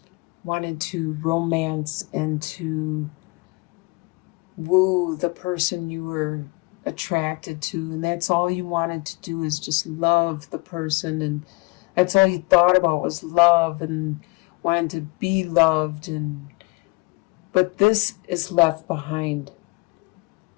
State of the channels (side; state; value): right; quieter; 27.0 dB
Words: romance and to woo the person you were attracted to, and that's all you wanted to do, is just love the person, and that's all you thought about was love and wanted to be loved. But this is left behind.